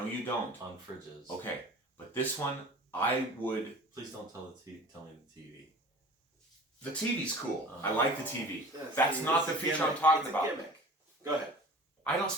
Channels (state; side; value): normal; both; correlation 0.42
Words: you don't. on fridges. Okay, but this one, I would... Please don't tell me the TV. The TV's cool. I like the TV. Yes, That's it's not a the feature gimmick. I'm talking It's a about. gimmick. Go ahead. I don't